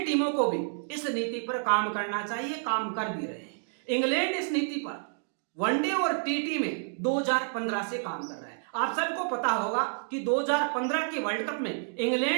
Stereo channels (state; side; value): silent; left; digital silence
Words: को भी इस नीति पर काम करना चाहिए, काम कर भी रहे हैं। इंग्लैंड इस नीति पर वनडे और टी में 2015 से काम कर रहा है। आप सबको पता होगा कि 2015 के वर्ल्ड कप में